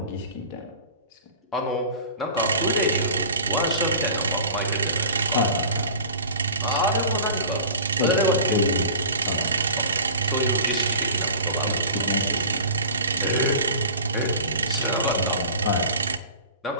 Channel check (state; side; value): inverted; both; correlation -0.40